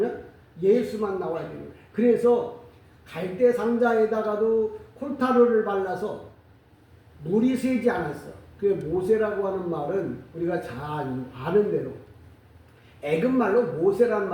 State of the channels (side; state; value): both; identical; correlation 1.00